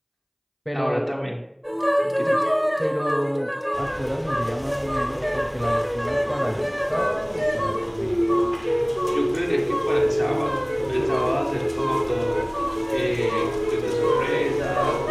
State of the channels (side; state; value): both; identical; correlation 1.00